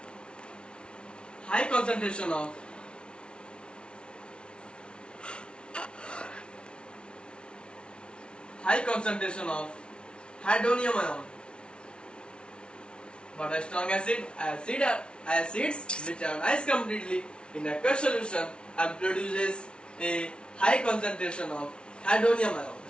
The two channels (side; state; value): right; late; 0.057 ms